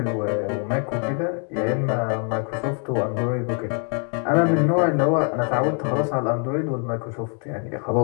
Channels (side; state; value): right; quieter; 39.6 dB